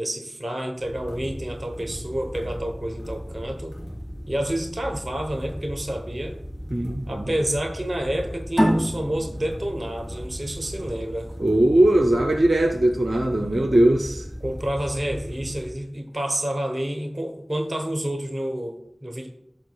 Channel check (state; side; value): normal; both; correlation 0.97